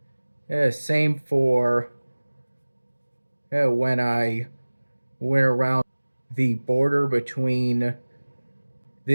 Same for when I went around the border between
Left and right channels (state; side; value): inverted; both; correlation -1.00